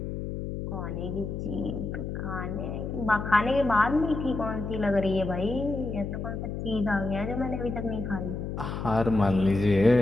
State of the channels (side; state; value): left; noise; hum, 5 dB below the sound